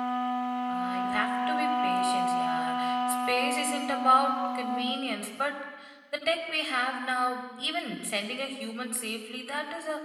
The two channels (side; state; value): both; identical; correlation 1.00